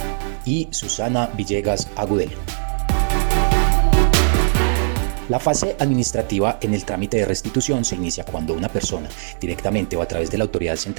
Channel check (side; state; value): left; silent; 62 dB below the other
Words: y Susana Villegas Agudelo. La fase administrativa en el trámite de restitución se inicia cuando una persona, directamente o a través de la autoridad